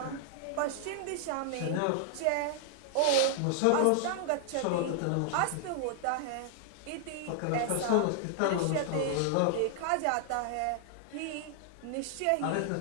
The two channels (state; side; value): different; both; correlation 0.00